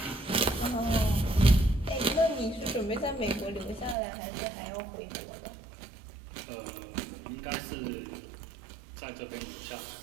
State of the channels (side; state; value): left; drops out; at 4.0 s